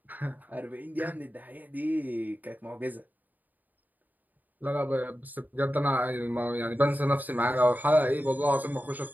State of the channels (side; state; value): left; late; 0.084 ms